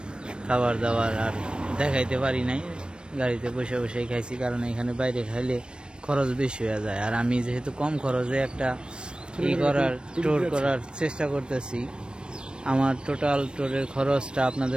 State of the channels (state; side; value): late; left; 0.054 ms